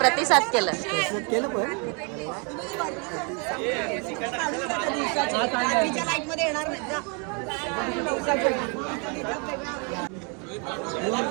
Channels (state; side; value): quieter; left; 35.1 dB